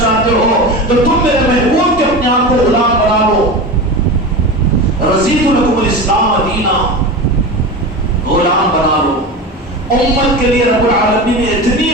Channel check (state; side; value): normal; both; correlation 0.27